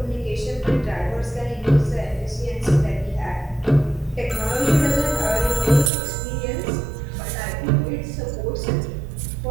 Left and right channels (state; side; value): drops out; left; at 5.9 s